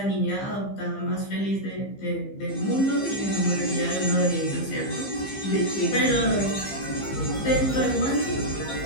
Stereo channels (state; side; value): late; right; 15 ms